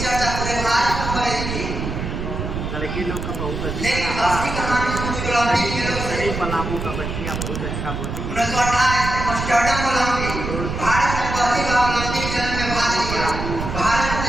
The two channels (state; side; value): noise; right; rumble, 5 dB below the sound